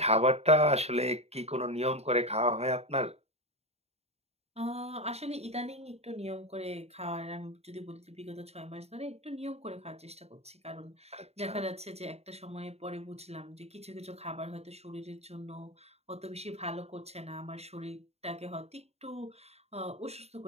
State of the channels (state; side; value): late; left; 0.30 ms